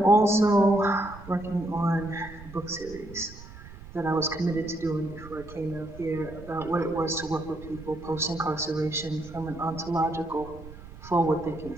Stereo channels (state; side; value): noise; right; rumble, 16 dB below the sound